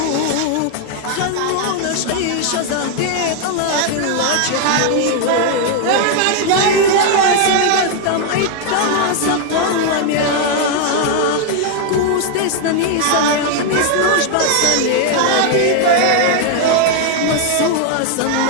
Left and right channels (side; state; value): both; different; correlation 0.00